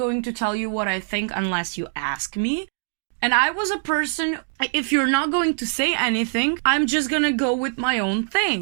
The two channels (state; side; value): silent; left; digital silence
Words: to tell you what I think unless you ask me. And I was a person, if you're not going to say anything, I'm just gonna go with my own